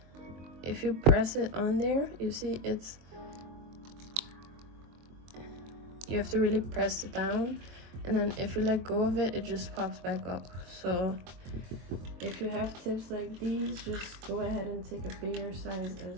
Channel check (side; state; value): left; late; 23 ms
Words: if you press it on there, you see you have to really press it down, and then if you let go of it, it just pops back up. So if you have tips like these, just go ahead and take a bigger size